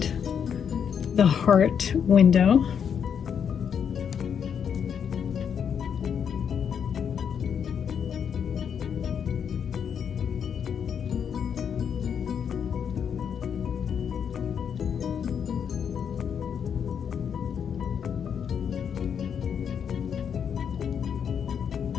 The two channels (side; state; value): right; quieter; 7.6 dB